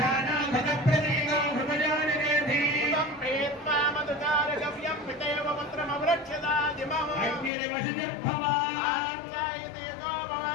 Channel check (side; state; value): right; drops out; at 7.5 s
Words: ప్రతీకో హృదయానిరేధీవం ప్రీత్వా మధుకారగవ్యం పితేవ పుత్రమవృక్షదాజిమం అగ్నిర్వశిర్భవ ఆంగాయతే గో భవ